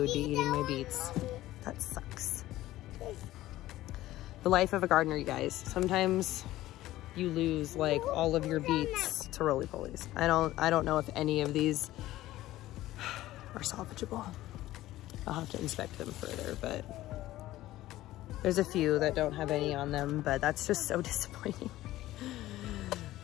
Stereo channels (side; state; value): right; quieter; 15.6 dB